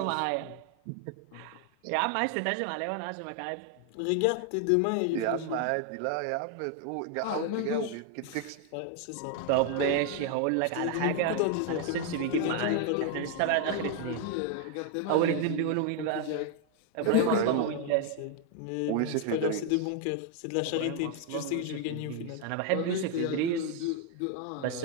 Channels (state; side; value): different; both; correlation 0.00